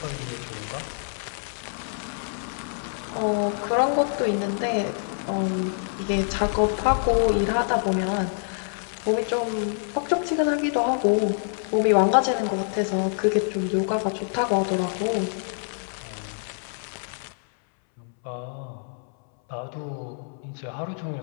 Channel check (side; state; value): right; silent; 61 dB below the other